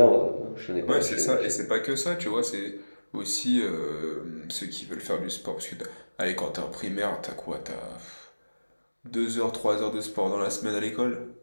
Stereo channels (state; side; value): inverted; both; correlation -1.00